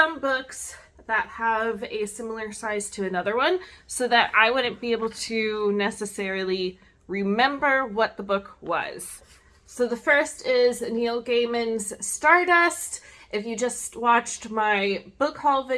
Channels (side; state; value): both; identical; correlation 1.00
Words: books that have a similar size to another one so that I wouldn't be able to necessarily remember what the book was. So the first is Neil Gaiman's Stardust. If you just watched my book haul